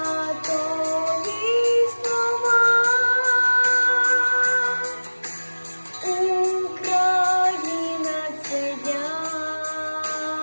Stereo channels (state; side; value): inverted; both; correlation -1.00